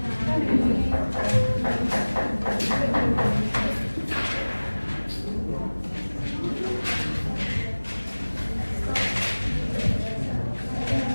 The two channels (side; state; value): both; inverted; correlation -1.00